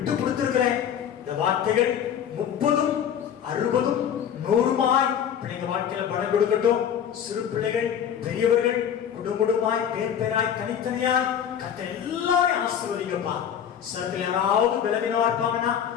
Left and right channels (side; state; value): right; quieter; 8.9 dB